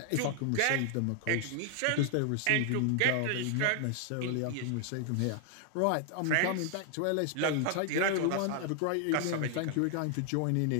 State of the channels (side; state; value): both; different; correlation 0.00